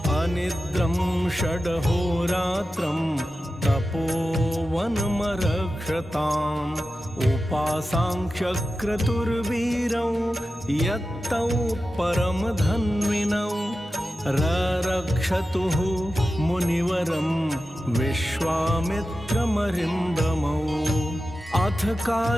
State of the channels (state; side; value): normal; both; correlation 0.93